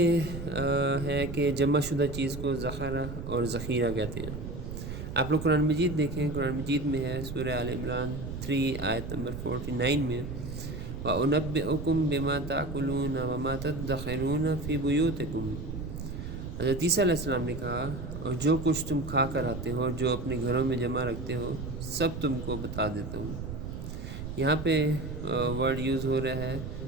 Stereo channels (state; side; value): noise; right; rumble, 7 dB below the sound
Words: ہے کہ جمع شدہ چیز کو ذخیرہ اور ذخیرہ کہتے ہیں۔ آپ لوگ قرآن مجید دیکھیں، قرآن مجید میں ہے سورہ آل عمران 3 آیت نمبر 49 میں وَأُنَبِّئُكُم بِمَا تَأْكُلُونَ وَمَا تَدَّخِرُونَ فِي بُيُوتِكُم۔ حضرت عیسیٰ علیہ السلام نے کہا، اور جو کچھ تم کھا کر آتے ہو اور جو اپنے گھروں میں جمع رکھتے ہو سب تم کو بتا دیتا ہوں۔ یہاں پہ ورڈ یوز ہو رہا ہے